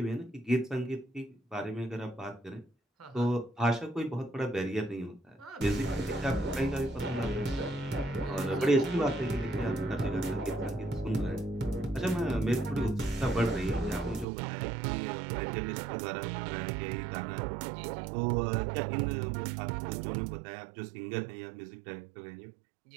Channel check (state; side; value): drops out; left; at 14.2 s